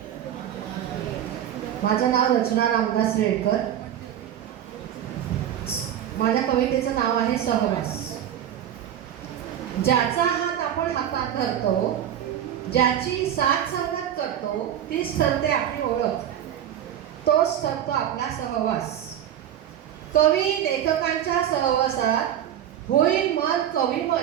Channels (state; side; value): quieter; left; 10.5 dB